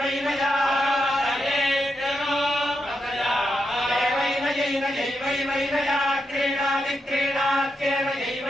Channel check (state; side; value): normal; both; correlation 0.85